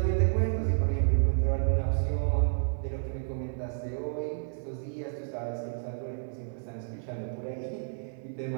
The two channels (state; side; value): silent; left; 57 dB below the other